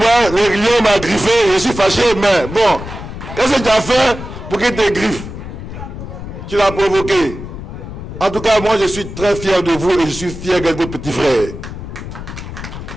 le lion m'a griffé, je suis fâché, mais bon, qu'est-ce que tu as fait pour qu'il te griffe? Tu l'as provoqué. En tout cas, moi, je suis très fier de vous et je suis fier de votre petit frère.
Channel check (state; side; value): noise; left; rumble, 10 dB below the sound